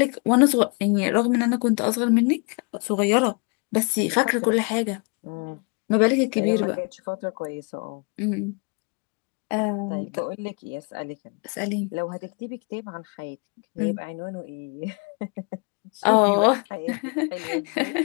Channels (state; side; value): quieter; right; 34.7 dB